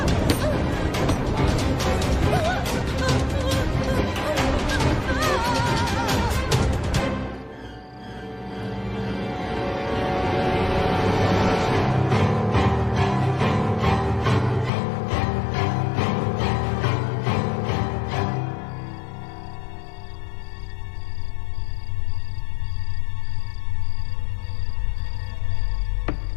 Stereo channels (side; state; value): right; drops out; at 14.7 s